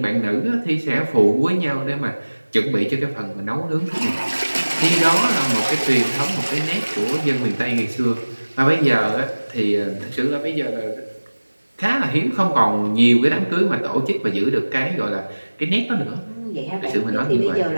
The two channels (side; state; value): both; inverted; correlation -1.00